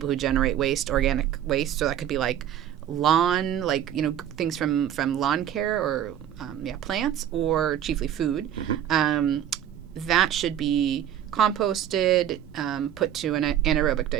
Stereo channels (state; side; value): quieter; left; 10.6 dB